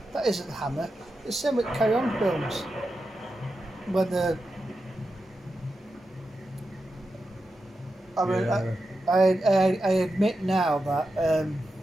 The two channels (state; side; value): normal; both; correlation 0.90